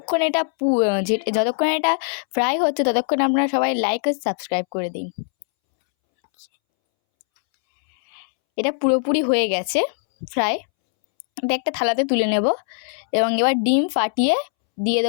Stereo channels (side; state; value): right; silent; 65 dB below the other